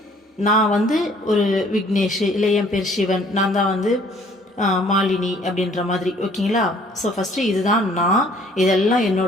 நான் வந்து ஒரு விக்னேஷ், இல்லை என் பேர் சிவன், நான் தான் வந்து மாலினி அப்படின்ற மாதிரி. ஓகேங்களா? ஸோ ஃபர்ஸ்ட் இதுதான் நான், இதெல்லாம்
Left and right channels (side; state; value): both; normal; correlation 0.58